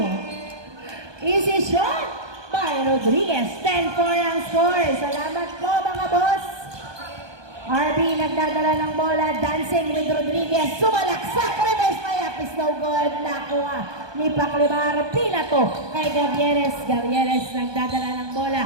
Easy shot by Rodriguez. 10-4 ang score. Salamat po mga boss. RB nagdadala ng bola, dancing with Rodriguez, sumalaksak, reverse layup is no good, nakuha ni Paclabar, pinato kay Gavieres nagdadala ng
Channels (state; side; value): late; left; 1.2 ms